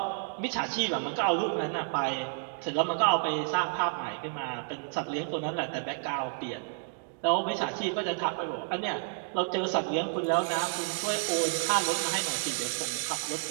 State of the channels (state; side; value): silent; left; digital silence